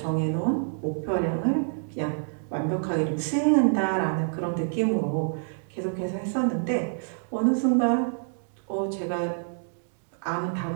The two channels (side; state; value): left; silent; digital silence